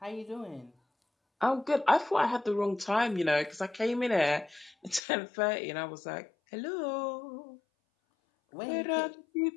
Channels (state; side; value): drops out; right; at 5.0 s